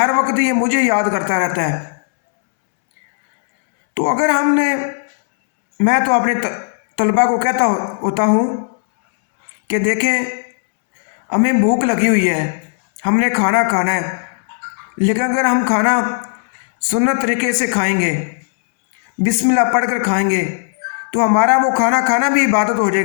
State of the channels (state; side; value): silent; right; 69 dB below the other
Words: وقت یہ مجھے یاد کرتا رہتا ہے۔ تو اگر میں تو اپنے طلباء کو کہتا ہوتا ہوں کہ دیکھیں ہمیں بھوک لگی ہوئی ہے، ہم نے کھانا کھانا ہے، لیکن اگر ہم کھانا سنت طریقے سے کھائیں گے، بسم اللہ پڑھ کر کھائیں گے، تو ہمارا وہ کھانا بھی عبادت ہو